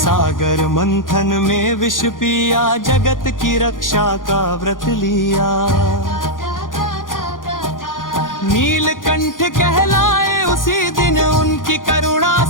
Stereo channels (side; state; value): right; late; 0.89 ms